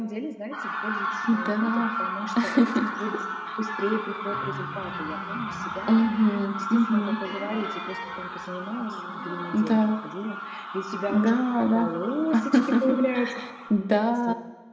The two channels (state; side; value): identical; both; correlation 1.00